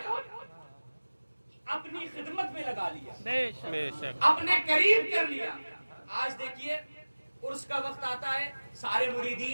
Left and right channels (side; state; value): both; inverted; correlation -1.00